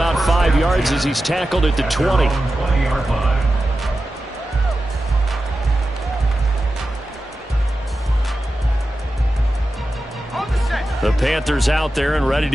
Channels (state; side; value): normal; both; correlation 0.93